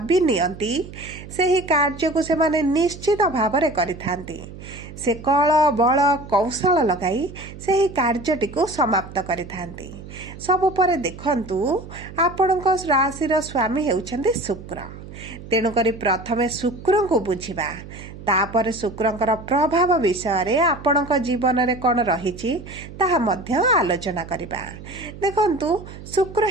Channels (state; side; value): noise; right; hum, 14 dB below the sound